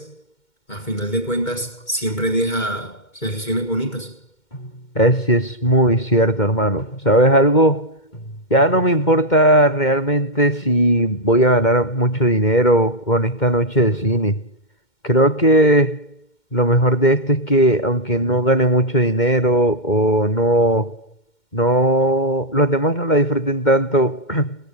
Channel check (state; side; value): late; right; 2.1 ms